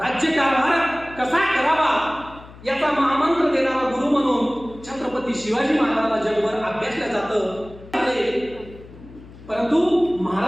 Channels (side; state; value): left; noise; hum, 19 dB below the sound